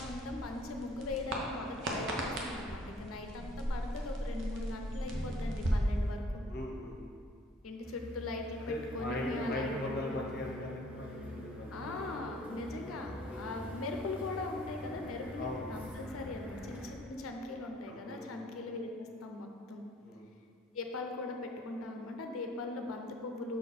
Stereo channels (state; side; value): normal; both; correlation 0.57